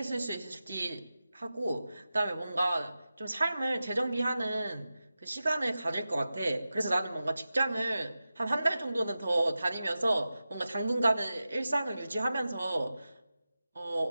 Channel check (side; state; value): both; inverted; correlation -0.93